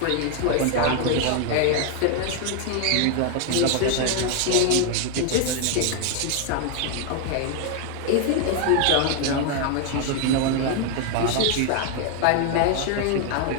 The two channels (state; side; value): different; both; correlation 0.00